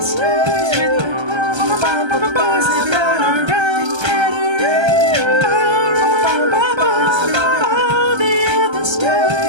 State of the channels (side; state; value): left; late; 1.3 ms